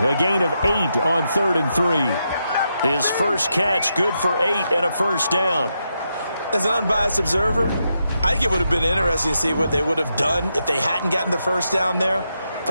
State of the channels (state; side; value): inverted; both; correlation -0.83